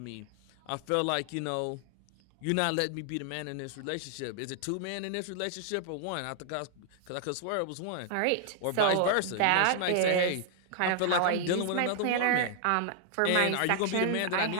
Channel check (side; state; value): both; different; correlation -0.01